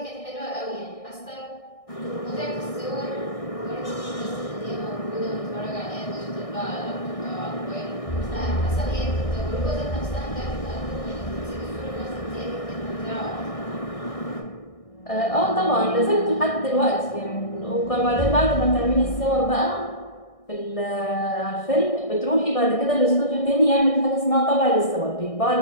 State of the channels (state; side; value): late; right; 1.6 ms